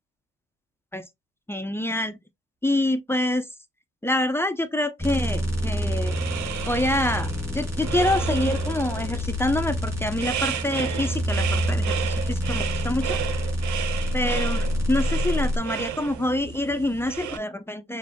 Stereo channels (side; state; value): both; normal; correlation 0.70